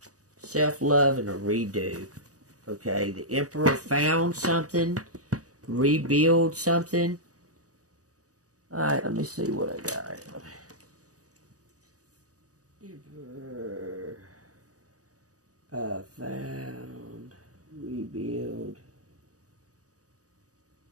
Self-love and a redo. Okay? The Emperor found something. Rebuild something. Alright, let me see what I got. Emperor. Found. Rebuild.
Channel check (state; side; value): late; left; 0.67 ms